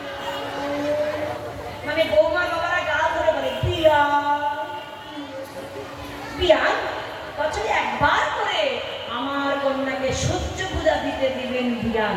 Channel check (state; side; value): identical; both; correlation 1.00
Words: মানে বৌমার বাবারা গাল ধরে বলে বিয়া। বিয়া বছরে একবার করে আমার কন্যাকে সূর্য পূজা দিতে দিবেন